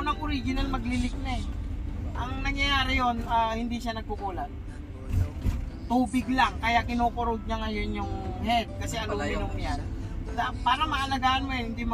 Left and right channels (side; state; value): both; identical; correlation 1.00